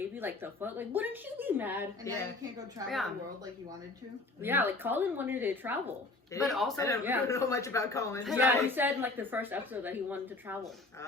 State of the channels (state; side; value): quieter; right; 3.2 dB